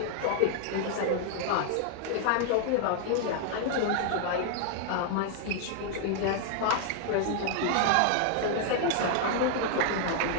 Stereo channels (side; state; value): both; different; correlation 0.00